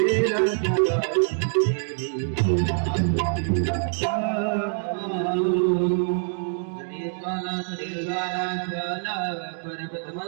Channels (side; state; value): left; silent; 61 dB below the other